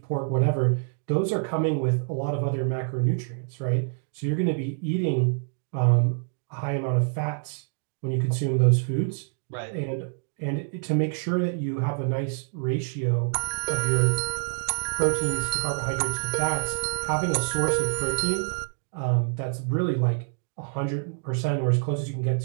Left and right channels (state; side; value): silent; left; digital silence